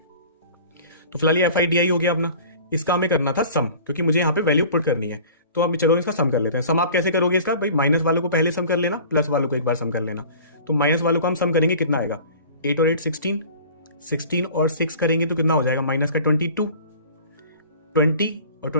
तो फिलहाल ये एफ आई डी आई हो गया अपना। इसका हमें करना था सम, क्योंकि मुझे यहाँ पे वैल्यू पुट करनी है। तो अब चलो इसका सम कर लेते हैं। सम आप कैसे करोगे इसका, भाई माइनस वालों को पहले सम कर लेना, प्लस वालों को एक बार सम कर लेना। तो माइनस वालों को हम सम करेंगे, कितना आएगा, 8 और 8 16, 16 और 6 करेंगे तो कितना हो जाएगा, माइनस का 22, 20 और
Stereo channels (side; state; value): both; inverted; correlation -0.44